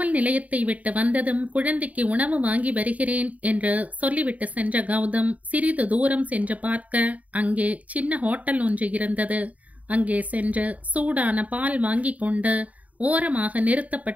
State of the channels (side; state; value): left; late; 0.070 ms